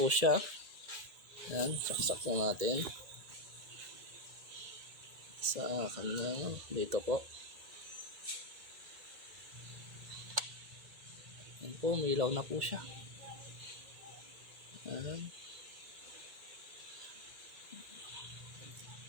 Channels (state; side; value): late; left; 1.8 ms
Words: siya. Ayan, saksak po natin sa kanya dito po. Ayan po, umilaw na po siya. Ayan.